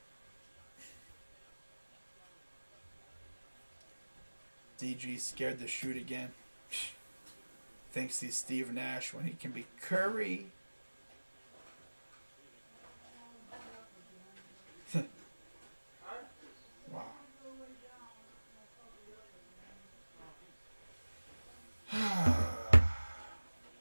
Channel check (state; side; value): inverted; both; correlation -1.00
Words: DG scared to shoot again. Thinks he's Steve Nash when he can be Curry. Wow.